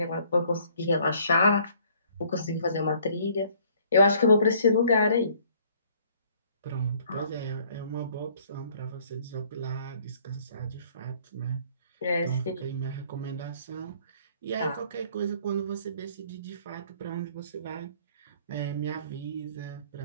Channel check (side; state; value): both; inverted; correlation -0.59